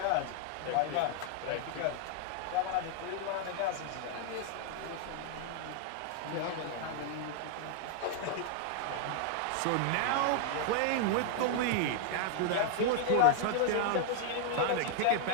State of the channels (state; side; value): different; both; correlation 0.00